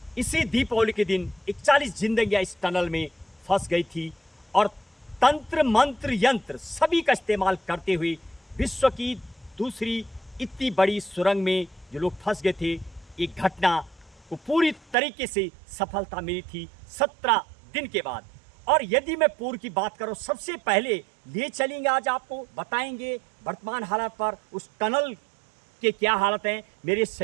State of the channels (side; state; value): left; drops out; at 15.0 s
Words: इसी दीपावली के दिन 41 जिंदगियां इस टनल में फंस गई थी और तंत्र मंत्र यंत्र सभी का इस्तेमाल करते हुए विश्व की दूसरी इतनी बड़ी सुरंग में जो लोग फंस गए थे, एक घटना को पूरी तरीके से सफलता मिली थी 17 दिन के बाद। और यदि मैं पूर्व की बात करूं, सबसे पहले ले चलेंगे, आज आपको बताएंगे वर्तमान हालात पर उस टनल के क्या हालत हैं। मेरे